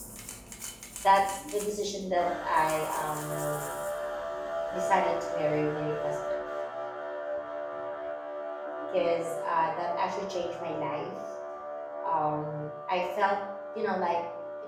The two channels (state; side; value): identical; both; correlation 1.00